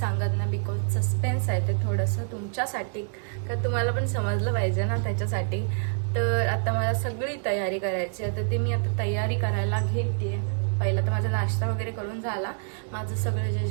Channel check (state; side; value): silent; left; 57 dB below the other